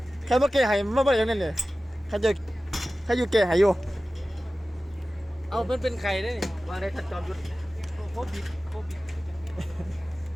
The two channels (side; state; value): both; normal; correlation 0.96